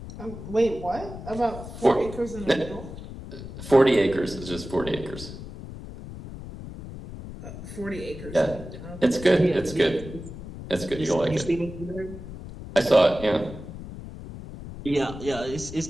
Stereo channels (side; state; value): left; noise; rumble, 12 dB below the sound